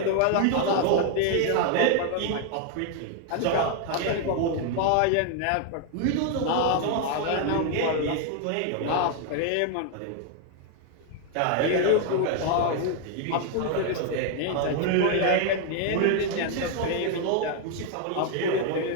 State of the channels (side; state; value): both; different; correlation 0.00